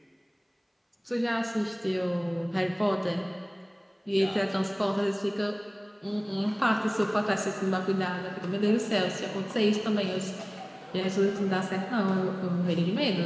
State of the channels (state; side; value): identical; both; correlation 1.00